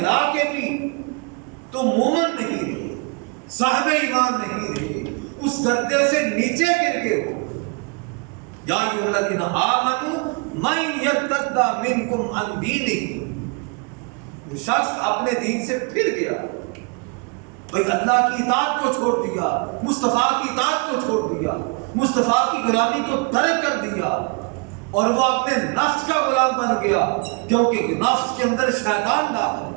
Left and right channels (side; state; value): left; quieter; 33.5 dB